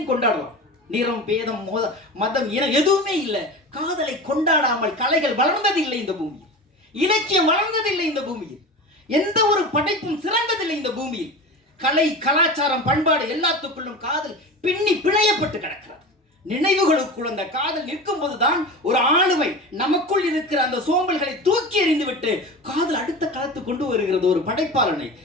கொண்டாடலாம். நிறம் பேதம் மதம் இனம் எதுவுமே இல்லை. காதலை கொண்டாடாமல் கலைகள் வளர்ந்ததில்லை இந்த பூமியில், இலக்கியம் வளர்ந்ததில்லை இந்த பூமியில், எந்த ஒரு படைப்பும் சிறந்ததில்லை இந்த பூமியில். கலை கலாச்சாரம் பண்பாடு எல்லாத்துக்குள்ளும் காதல் பின்னி பிணையப்பட்டு கிடக்கிறது. நினைவுகளுக்குள் அந்த காதல் நிற்கும் போதுதான் ஒரு ஆளுமை நமக்குள் இருக்கிற அந்த சோம்பல்களை தூக்கி எறிந்துவிட்டு காதல் அடுத்த களத்து கொண்டு வருகிறது ஒரு படைப்பாளனை.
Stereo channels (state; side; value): normal; both; correlation 0.30